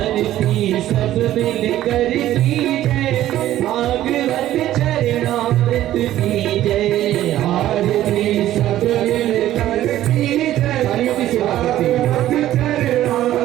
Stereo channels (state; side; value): quieter; left; 13.5 dB